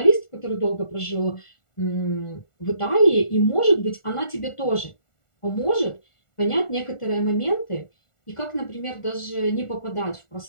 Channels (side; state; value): right; late; 1.4 ms